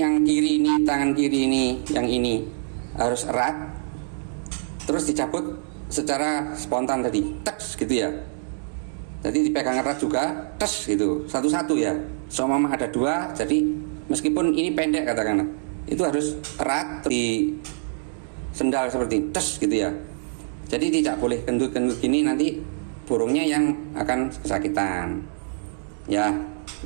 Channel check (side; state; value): left; silent; digital silence